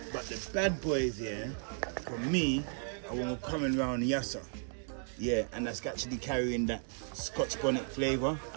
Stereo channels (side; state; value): left; silent; 55 dB below the other